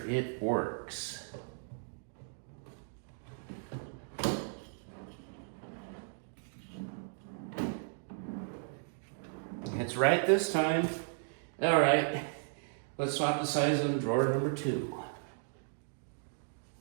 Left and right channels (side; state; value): left; silent; digital silence